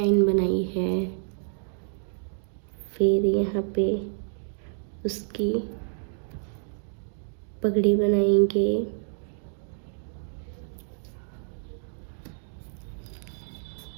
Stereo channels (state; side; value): silent; left; digital silence